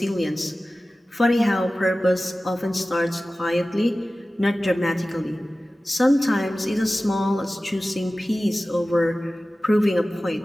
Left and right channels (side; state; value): both; normal; correlation 0.96